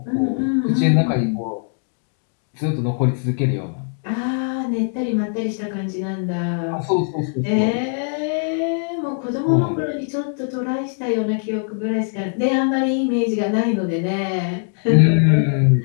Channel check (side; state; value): right; silent; 65 dB below the other